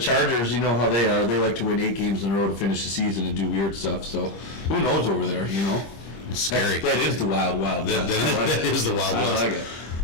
you know how they are. They like to win 8 games in a row to finish the season and do weird stuff. So who knows over there? It's scary. That is the wild west. That is the Wild I West. like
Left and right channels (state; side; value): late; right; 25 ms